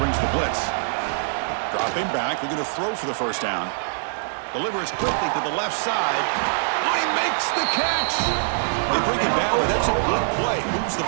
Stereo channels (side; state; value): left; silent; digital silence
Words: the blitz. Dropping back. They're going to throw for the first down. Delivers quickly to the left side. Oh, he makes the catch. They bring it down, but that's a good play. Moves the